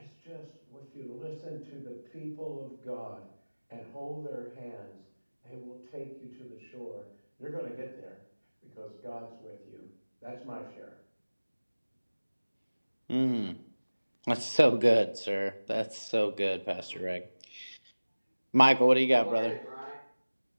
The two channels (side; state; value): both; inverted; correlation -1.00